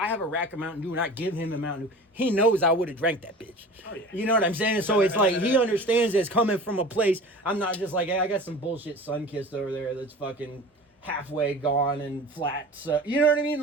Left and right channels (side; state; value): both; normal; correlation 0.39